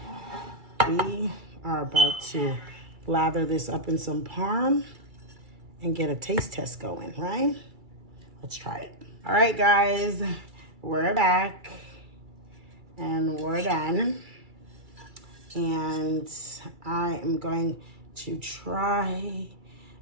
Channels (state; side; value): late; left; 2.3 ms